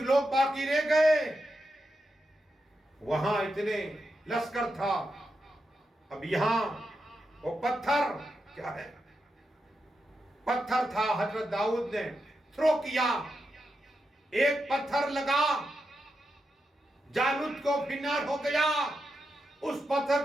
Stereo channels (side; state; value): both; normal; correlation 0.87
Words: لوگ باقی رہ گئے، وہاں اتنے لشکر تھا، اب یہاں وہ پتھر کیا ہے، پتھر تھا، حضرت داؤد نے تھرو کیا، ایک پتھر لگا، جالوت کو فنار ہو گیا، اس پتھر